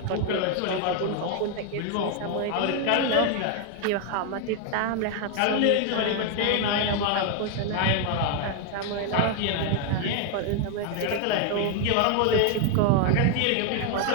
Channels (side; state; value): both; different; correlation 0.01